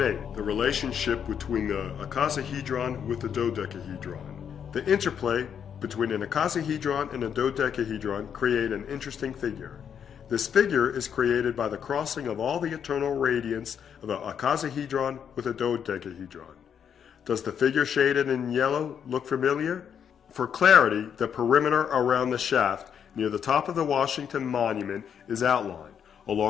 8. The relationship between the icosahedron with the dodecahedron. The interplay between an icosahedron and a dodecahedron create an interesting figure. This figure is created by the crossing of all the eternal radiance of an icosahedron with a dodecahedron. Does the figure shaded in yellow look familiar? For clarity, the perimeter around the shaft near the top of the Washington Monument is outlined,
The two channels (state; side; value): quieter; right; 8.0 dB